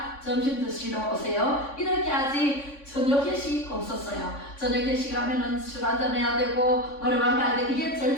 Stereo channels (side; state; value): right; late; 3.5 ms